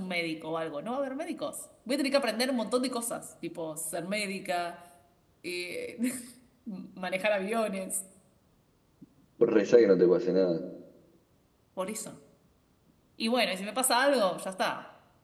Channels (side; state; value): both; identical; correlation 1.00